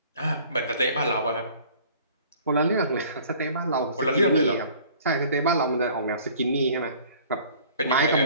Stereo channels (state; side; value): inverted; both; correlation -0.51